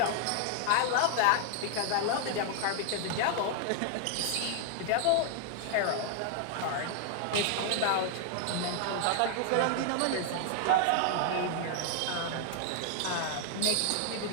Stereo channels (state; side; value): different; both; correlation 0.00